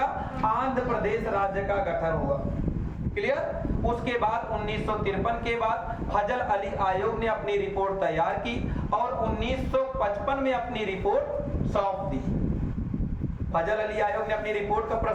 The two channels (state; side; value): identical; both; correlation 1.00